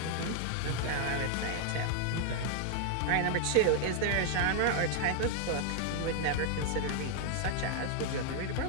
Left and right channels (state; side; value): different; both; correlation 0.00